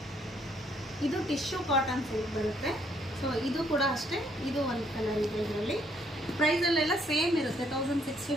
ಇದು ಟಿಶ್ಯೂ ಕಾಟನ್ ಸಿಲ್ಕ್ ಬರುತ್ತೆ. ಸೊ ಇದು ಕೂಡ ಅಷ್ಟೇ, ಇದು ಒಂದು ಕಲರ್ ಇದೆ. ಇದರಲ್ಲಿ ಪ್ರೈಸಲ್ಲೆಲ್ಲ ಸೇಮ್ ಇರುತ್ತೆ,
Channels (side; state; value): both; normal; correlation 0.68